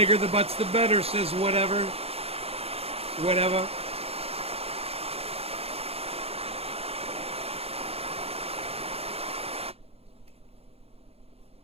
the butts, the better, says whatever. Whatever.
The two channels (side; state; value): left; late; 0.29 ms